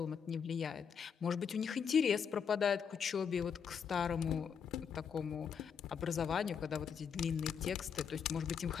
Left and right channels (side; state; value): right; quieter; 6.9 dB